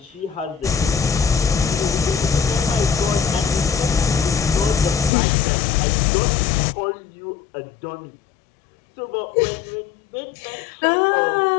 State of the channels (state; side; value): drops out; right; at 5.1 s